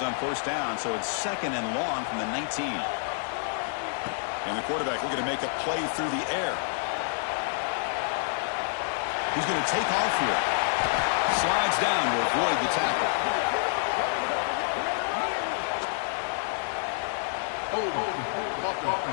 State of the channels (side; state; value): right; silent; digital silence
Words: on first down, so it's second and long from the 19. And the quarterback looking to make a play through the air. He's going to take off here. Slides down to avoid the tackle.